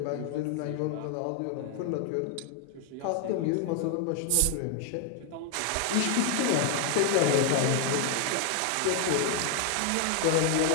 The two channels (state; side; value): different; both; correlation 0.00